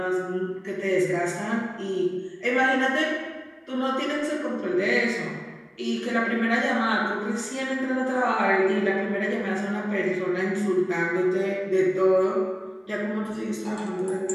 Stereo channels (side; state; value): both; identical; correlation 1.00